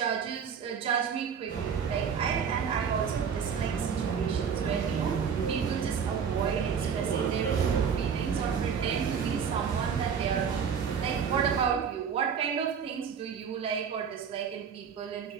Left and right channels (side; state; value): left; quieter; 7.0 dB